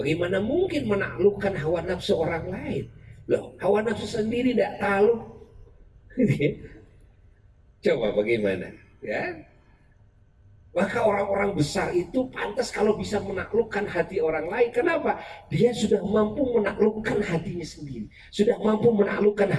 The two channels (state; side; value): identical; both; correlation 1.00